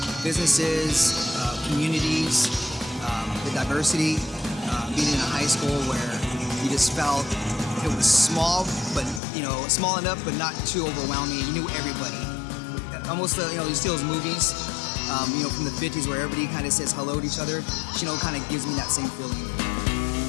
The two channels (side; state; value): right; drops out; at 9.2 s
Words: businesses, communities, the diversity, being in a high school where you just felt it was small, but small enough, but not too overwhelming. You knew everybody. Almost, you see those movies, from the 50s where everybody kind of says hello to each other. Chino kind of gives me that same feeling.